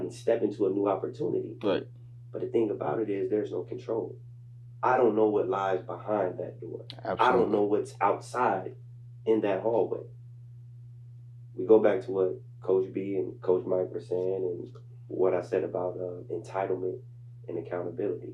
and step into a new opportunity. Right. But the thing about it is, there's no control. I don't know what lies behind that door. Absolutely. I don't know what's outside in that hallway. We go back to what Coach B and Coach Mike were saying, and what I said about entitlement and accountability.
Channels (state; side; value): identical; both; correlation 1.00